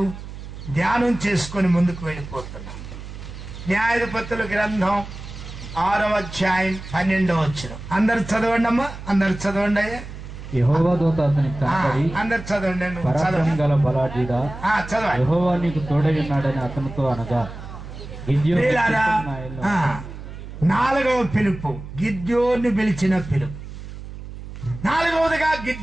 ధ్యానం చేసుకొని ముందుకు వెళ్ళిపోతున్నాం. న్యాయాధిపతుల గ్రంథం 6వ అధ్యాయం 12వ వచనం అందరు చదవండి అమ్మా, అందరు చదవండి అయ్యా. యెహోవా దూత అతనికి కనపడి, అందరు చదవండి. పరాక్రమం గల బలాఢ్యుడా, చదవండి. యెహోవా నీకు తోడై ఉన్నాడని అతనితో అనగా, ప్రియులారా, 4వ పిలుపు గిద్యోను పిలిచిన పిలుపు. 4వదిగా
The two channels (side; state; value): right; noise; hum, 12 dB below the sound